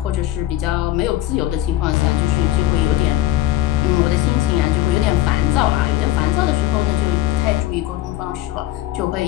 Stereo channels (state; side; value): quieter; right; 14.9 dB